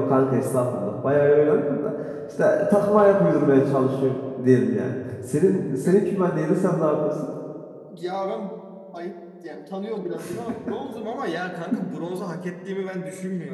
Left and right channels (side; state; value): both; identical; correlation 1.00